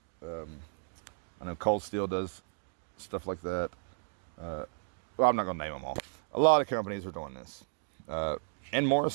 I know Cold Steel does stuff like that. Well, I'm not going to name them all. A lot of companies are doing this. And Mora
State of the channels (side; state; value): left; silent; 55 dB below the other